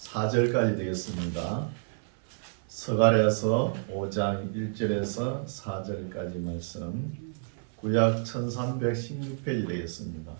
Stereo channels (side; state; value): left; silent; 56 dB below the other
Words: 되겠습니다. 스가랴서 5장 1절에서 4절까지 말씀, 구약 1316페이지 되겠습니다.